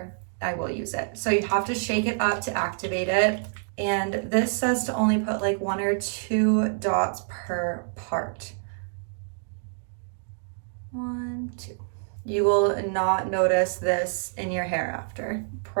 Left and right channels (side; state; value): left; silent; digital silence